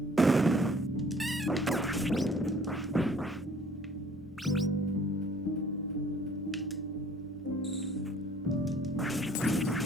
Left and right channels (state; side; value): noise; left; hum, 30 dB below the sound